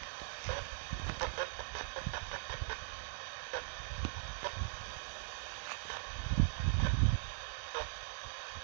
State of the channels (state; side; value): silent; left; digital silence